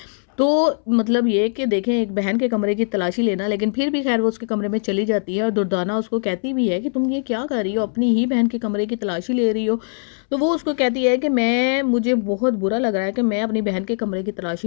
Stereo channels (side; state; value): right; silent; 65 dB below the other